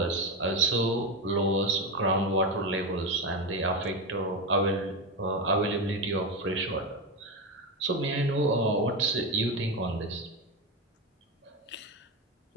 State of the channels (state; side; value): normal; both; correlation 0.14